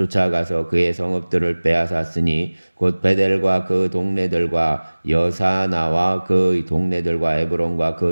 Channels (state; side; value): inverted; both; correlation -1.00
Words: 그의 성읍들을 빼앗았으니 곧 베델과 그 동네들과 여사나와 그 동네들과 에브론과